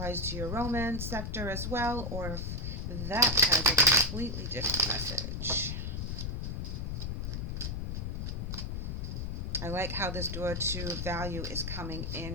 to your romance sector as well, or if that has a completely different message. I like how this door to value is coming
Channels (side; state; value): left; noise; rumble, 3 dB below the sound